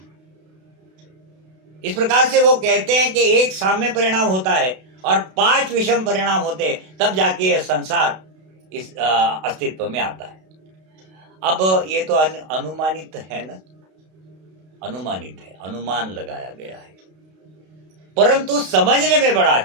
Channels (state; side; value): late; left; 32 ms